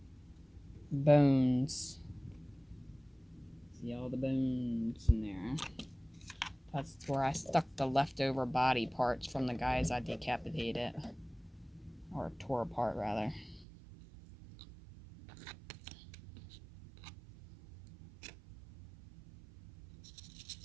bones. See all the bones in there? That's where I stuck the leftover body parts from the guys I decapitated. Or tore apart, rather.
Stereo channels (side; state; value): left; drops out; at 13.7 s